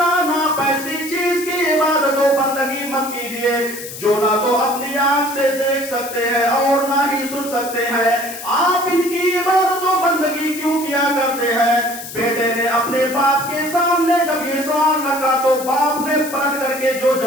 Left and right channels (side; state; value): left; noise; hiss, 11 dB below the sound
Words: آپ ایسی چیز کی عبادت و بندگی مت کیجیے جو نہ تو اپنی آنکھ سے دیکھ سکتے ہیں اور نہ ہی سن سکتے ہیں. آپ ان کی عبادت و بندگی کیوں کیا کرتے ہیں؟ بیٹے نے اپنے باپ کے سامنے جب یہ سوال رکھا تو باپ نے پلٹ کر کے جو